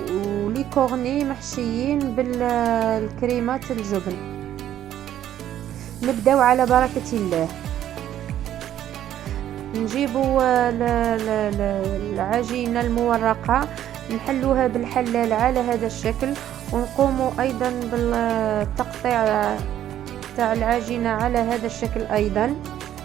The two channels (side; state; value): left; quieter; 11.5 dB